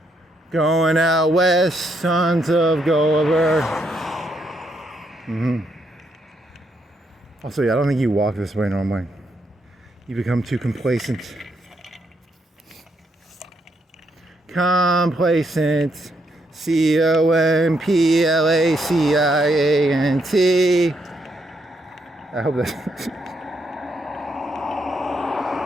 Going out west, sons of Gulliver. Also, yeah, I don't think you walk this way normally. You become too complacent. Complacent. C-O-M-P-L-A-C-I-A-N-T. I hope that's...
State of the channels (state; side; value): normal; both; correlation 0.77